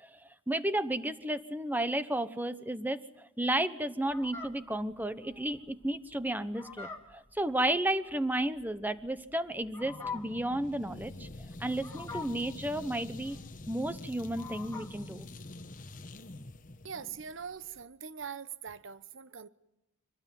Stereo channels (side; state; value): both; normal; correlation 0.70